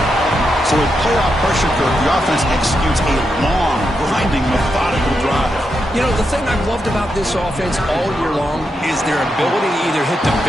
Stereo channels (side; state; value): both; normal; correlation 0.84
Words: So with playoff pressure, Kirk, the offense executes a long, grinding, methodical drive. You know, the thing I've loved about this offense all year long is their ability to either hit the